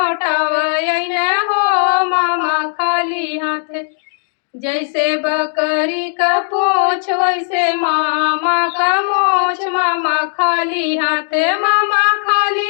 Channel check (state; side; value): silent; right; digital silence